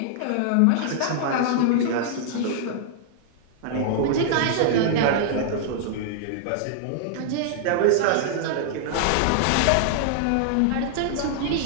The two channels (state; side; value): different; both; correlation -0.01